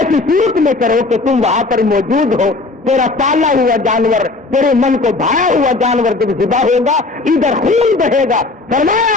صورت میں کرو کہ تم وہاں پر موجود ہو. تیرا پالا ہوا جانور, تیرے من کو بھایا ہوا جانور جب ذبح ہوگا ادھر خون بہے گا.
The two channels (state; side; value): quieter; right; 3.4 dB